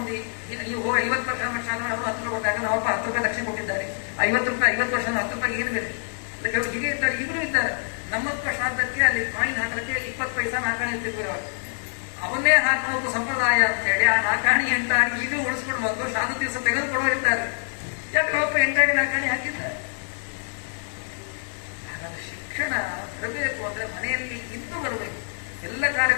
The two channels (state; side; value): silent; right; 61 dB below the other